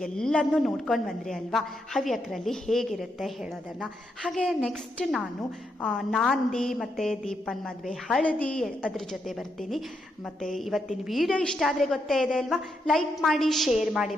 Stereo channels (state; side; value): normal; both; correlation 0.81